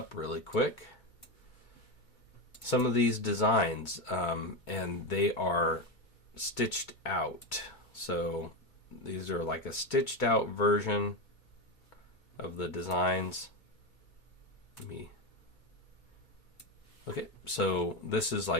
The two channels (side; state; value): right; late; 2.2 ms